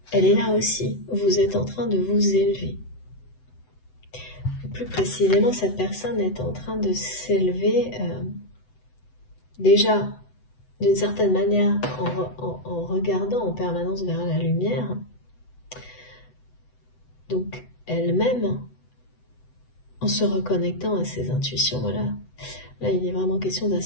Elle est là aussi. Vous êtes en train de vous élever. Plus précisément, cette personne est en train de s'élever déjà d'une certaine manière en regardant en permanence vers la lumière. Donc elle-même, en se reconnectant à ses intuitions, voilà. Là, il est vraiment question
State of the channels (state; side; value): late; right; 7.9 ms